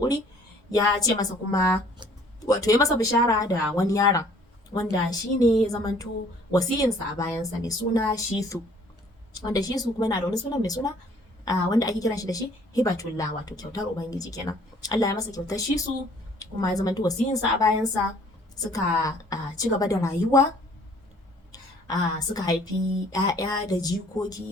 ya ce masa kuma wato ya masa bishara da wani yaron wanda shi ne ya zamanto wasiyinsa a bayansa mai suna Shisu, wanda Shisu kuma yana da wani sunan mai suna wanda ake kiran shi da shi Hibatullah, wato kyautar Ubangiji kenan. Allah ya masa kyautar Shisu kuma ya zamanto wasiyinsa a bayansa, suka ci gaba da rayuwa, suka haifi 'ya'ya da jikoki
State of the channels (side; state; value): both; normal; correlation 0.57